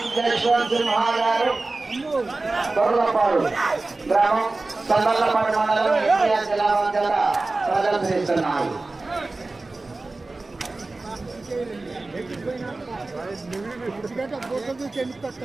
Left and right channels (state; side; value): quieter; left; 3.3 dB